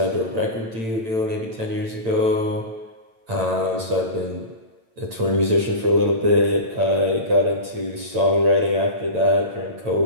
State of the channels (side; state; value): left; late; 8.9 ms